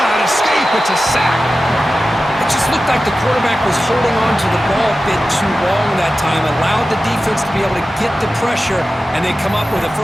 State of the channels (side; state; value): both; normal; correlation 0.94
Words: escape. It's a sack. It just looked like the quarterback was holding on to the ball a bit too long that time, allowed the defense to be able to get the pressure, and they come up with the